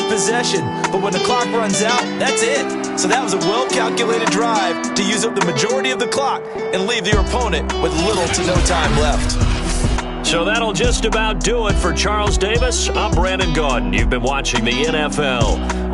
a possession, but when the clock runs out, that's it. So that was a well-calculated drive to use up the majority of the clock and leave your opponent with little to no time left. So that'll just about do it for Charles Davis. I'm Brandon Gaudin. You've been watching the NFL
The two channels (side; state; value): both; identical; correlation 1.00